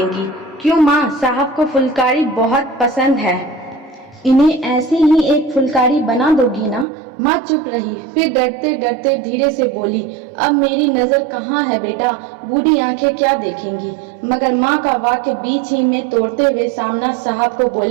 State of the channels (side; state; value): left; drops out; at 6.9 s